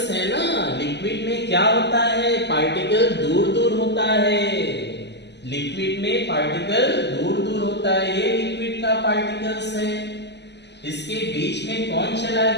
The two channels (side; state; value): right; late; 0.50 ms